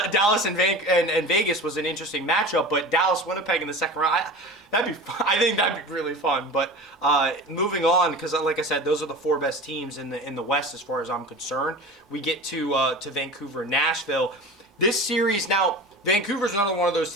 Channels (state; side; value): normal; both; correlation 0.34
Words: and Vegas was an interesting matchup, but Dallas Winnipeg in the second round, that'd be fun. I think that'd be really fun. But moving on, because like I said, those are the 4 best teams in the West as far as I'm concerned. We get to Vancouver, Nashville. This series now. Vancouver's another one of those